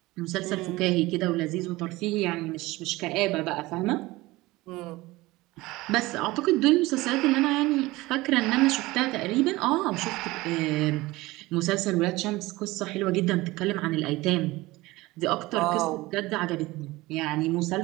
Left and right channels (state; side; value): quieter; left; 20.0 dB